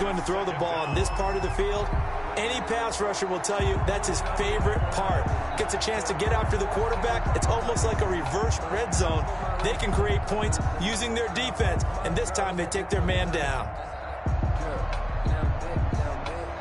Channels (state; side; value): identical; both; correlation 1.00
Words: to throw the ball on this part of the field, any pass rusher will tell you that's his favorite part. Gets a chance to get after the quarterback. It's almost like a reverse red zone. They can create points using their defense, and this time they take their man down.